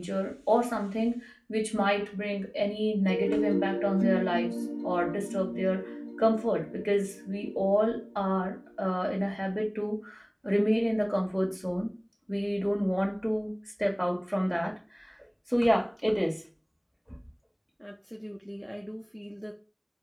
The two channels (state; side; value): identical; both; correlation 1.00